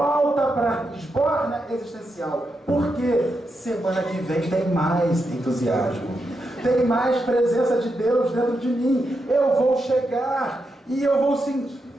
para a esborna existencial. Porque semana que vem tem mais entusiasmo, tem mais presença de Deus dentro de mim. Eu vou chegar e eu vou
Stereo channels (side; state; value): both; normal; correlation 0.85